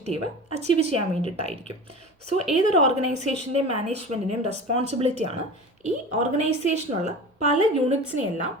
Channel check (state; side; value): normal; both; correlation 0.34